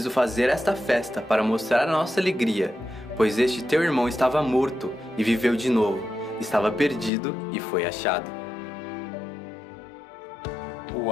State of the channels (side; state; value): right; drops out; at 7.1 s